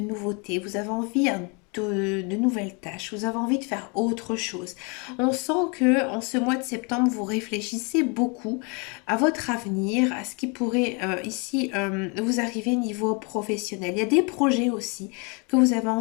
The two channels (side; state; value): right; quieter; 32.5 dB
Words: vous avez envie de nouvelles tâches, vous avez envie de faire autre chose. On sent que en ce mois de septembre, vous réfléchissez beaucoup à votre avenir, à ce qui pourrait ici vous arriver niveau professionnel. Il y a des projets aussi que vous avez